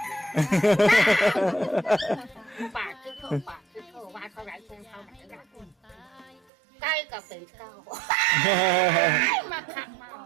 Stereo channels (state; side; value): drops out; left; at 6.4 s